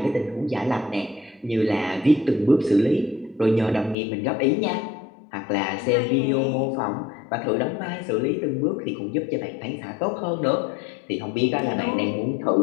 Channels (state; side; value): drops out; right; at 4.0 s